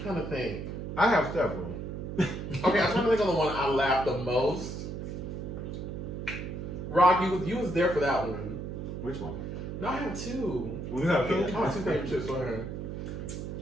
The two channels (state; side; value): noise; right; hum, 6 dB below the sound